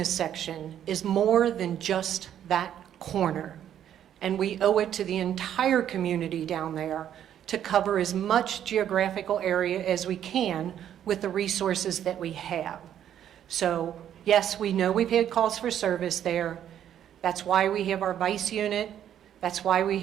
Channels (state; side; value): quieter; left; 10.2 dB